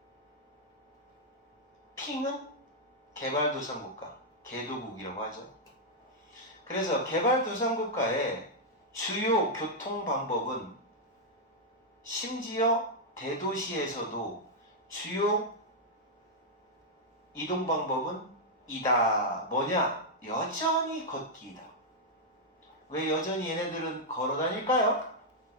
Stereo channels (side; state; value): both; normal; correlation -0.04